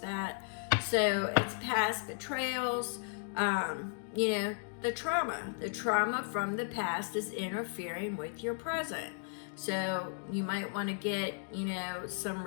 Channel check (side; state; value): right; silent; 54 dB below the other